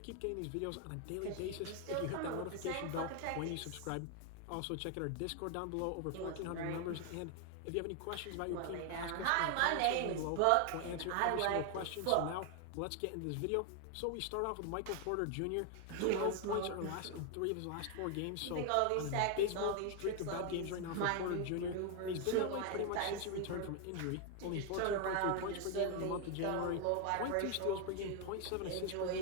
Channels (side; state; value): both; different; correlation 0.00